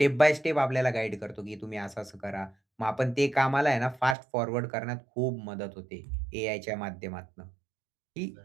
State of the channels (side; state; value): left; drops out; at 4.2 s